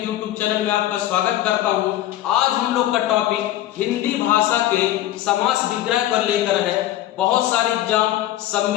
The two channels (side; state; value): right; quieter; 13.8 dB